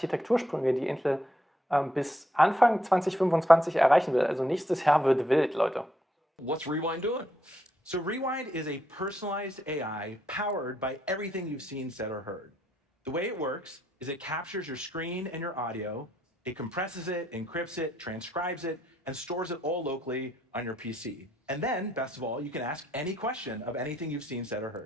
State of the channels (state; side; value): normal; both; correlation 0.76